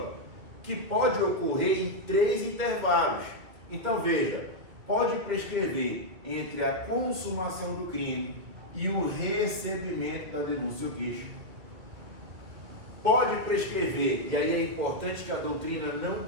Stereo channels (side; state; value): left; late; 2.6 ms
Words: que pode ocorrer em 3 intervalos. Então veja, pode prescrever entre a consumação do crime e o recebimento da denúncia ou queixa. Pode prescrever, e aí é importante que a doutrina não